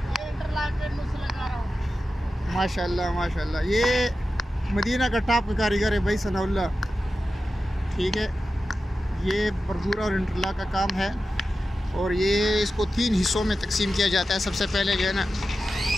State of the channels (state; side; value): normal; both; correlation 0.92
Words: माशाल्लाह माशाल्लाह, ये मदीना का टॉप कारीगर है भाई सनाउल्लाह। ठीक है, ये बरदूरा और इंटरलॉक का काम है और ये इसको 3 हिस्सों में तकसीम किया जाता है। सबसे पहले जो है ना,